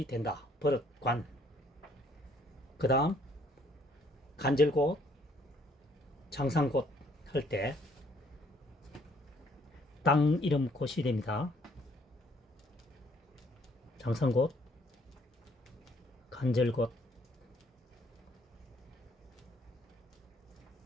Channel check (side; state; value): both; normal; correlation 0.65